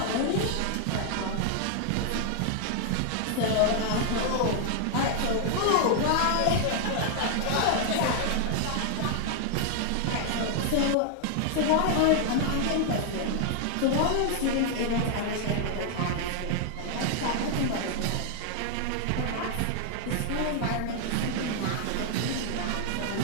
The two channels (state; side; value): different; both; correlation 0.00